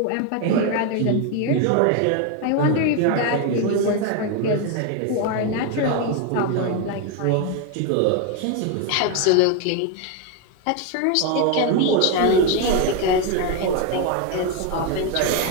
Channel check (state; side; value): different; both; correlation 0.02